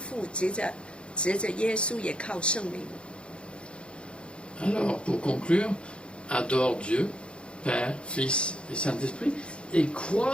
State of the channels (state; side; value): late; right; 0.057 ms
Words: 藉着耶稣，也靠圣灵。 Alors, pour conclure, adore Dieu, Père, Fils et Saint-Esprit, et